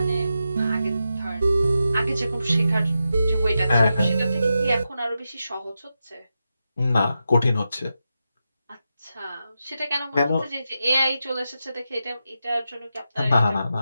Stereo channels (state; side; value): inverted; both; correlation -0.89